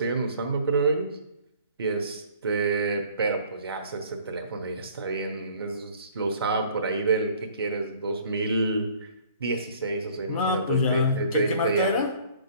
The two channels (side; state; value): both; inverted; correlation -0.53